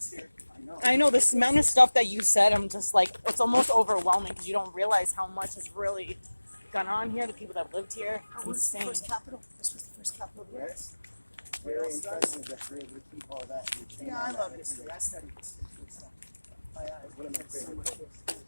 here. I know. I know this amount of stuff that you said, I'm just like, it's almost overwhelming because you don't realize how much has really gone on here, the people that lived here. It's What was the insane. first capital? This was the first capital of the Right. US. Very impressive that we're able to keep all that. and retain Yeah, all I that love history. information. I study history and stuff. One of my So favorite much books. history.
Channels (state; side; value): inverted; both; correlation -1.00